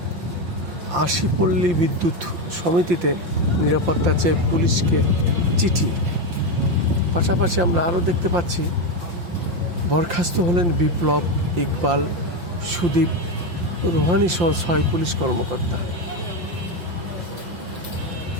আশিপল্লী বিদ্যুৎ সমিতিতে নিরাপত্তা চেয়ে পুলিশকে চিঠি। পাশাপাশি আমরা আরও দেখতে পাচ্ছি বরখাস্ত হলেন বিপ্লব, ইকবাল, সুদীপ, রোহানি সহ 6 পুলিশ কর্মকর্তা।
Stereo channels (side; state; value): left; late; 5.7 ms